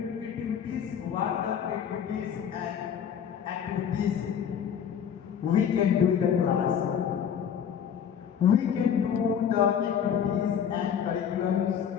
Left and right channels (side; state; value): right; quieter; 8.3 dB